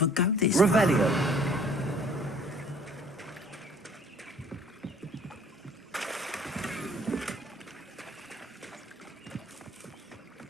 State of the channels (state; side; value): normal; both; correlation 0.54